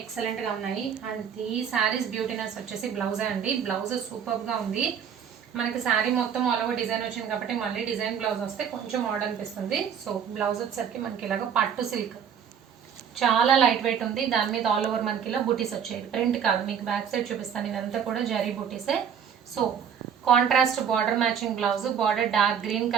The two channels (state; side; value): quieter; left; 7.9 dB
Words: ఉన్నాయి. అండ్ ఈ శారీస్ బ్యూటీనెస్ వచ్చేసి బ్లౌజే అండి. బ్లౌజ్ సూపర్గా ఉంది. మనకి శారీ మొత్తం ఆల్ ఓవర్ డిజైన్ వచ్చింది కాబట్టి మళ్ళీ డిజైన్ బ్లౌజ్ వస్తే కొంచెం ఆర్డర్ అనిపిస్తుంది. సో బ్లౌజ్ వచ్చేసరికి మనకి ఇలాగ పట్టు సిల్క్, చాలా లైట్ వెయిట్ ఉంది. దాని మీద ఆల్ ఓవర్ మనకి ఇలా బూటీస్ వచ్చాయి. ప్రింట్ కాదు, మీకు బ్యాక్ సైడ్ చూపిస్తాను. ఇదంతా కూడా జరీ బూటీసే. So contrast border matching blouse, border dark green